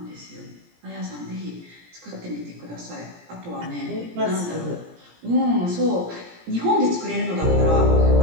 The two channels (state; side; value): late; left; 17 ms